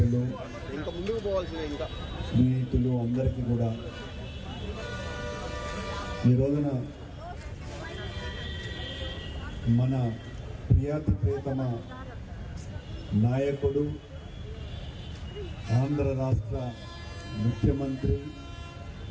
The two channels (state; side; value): identical; both; correlation 1.00